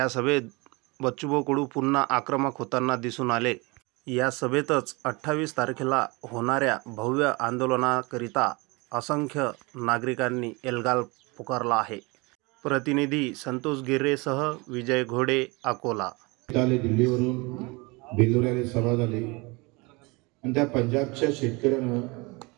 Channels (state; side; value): quieter; left; 26.4 dB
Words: सभेत बच्चूभाऊ कडू पुन्हा आक्रमक होताना दिसून आले. या सभेतच 28 तारखेला होणाऱ्या भव्य आंदोलनाकरिता असंख्य नागरिकांनी एल्गार पुकारला आहे. प्रतिनिधी संतोष गिर्रेसह विजय घोडे, अकोला. दिल्लीवरून बेल्लोऱ्याला सभा झाली आणि त्या पंजाबच्या शेतकऱ्यानं